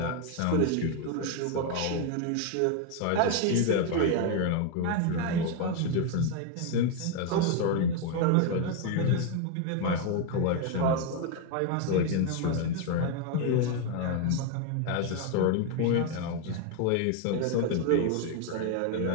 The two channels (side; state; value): both; different; correlation 0.01